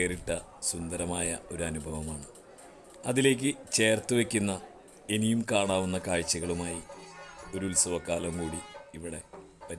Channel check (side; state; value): both; identical; correlation 1.00